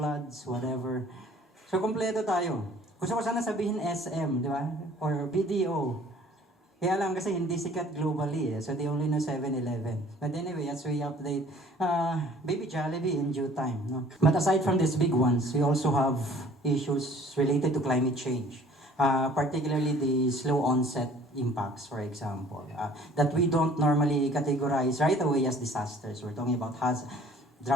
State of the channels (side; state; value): both; normal; correlation 0.53